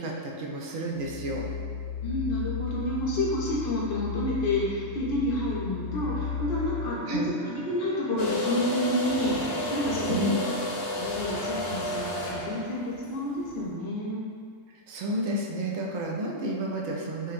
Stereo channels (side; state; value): right; late; 3.3 ms